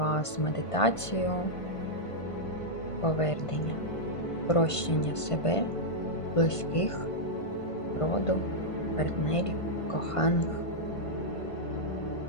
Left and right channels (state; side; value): late; right; 1.5 ms